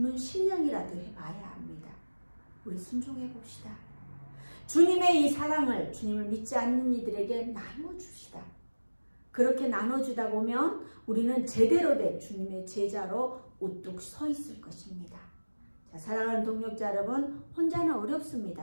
신령이라도 해봐야 합니다. 우리 순종해 봅시다. 주님의 이 사랑을 주님을 믿지 않는 이들에게 나눠줍시다. 그렇게 나눠주다 보면 우리는 제대로 된 주님의 제자로 우뚝 서 있을 것입니다. 자, 사랑하는 동역자 여러분, 혼자는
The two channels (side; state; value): both; inverted; correlation -1.00